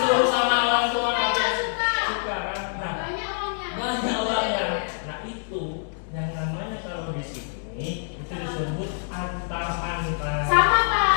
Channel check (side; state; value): right; silent; digital silence